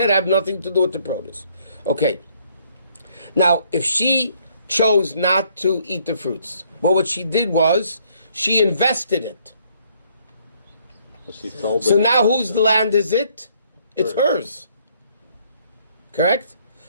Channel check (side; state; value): both; inverted; correlation -0.66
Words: I have nothing to do with the produce. Okay. Now, if she chose not to eat the fruits, well, what she did was, she invested it. But she sold So it. now whose land is it? It's hers. Correct?